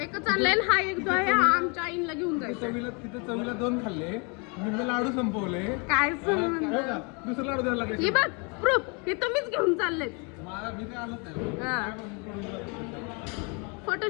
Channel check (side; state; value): right; quieter; 33.4 dB